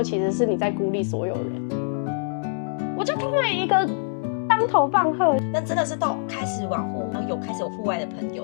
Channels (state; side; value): silent; right; digital silence